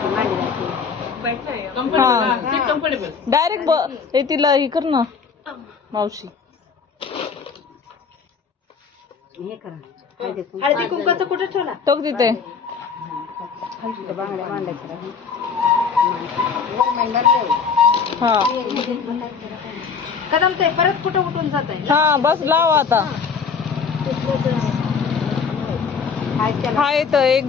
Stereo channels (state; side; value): quieter; right; 5.9 dB